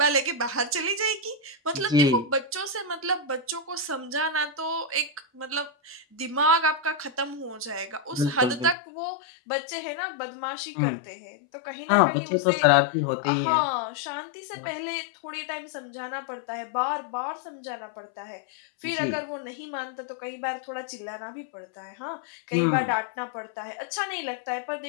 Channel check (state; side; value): drops out; right; at 8.8 s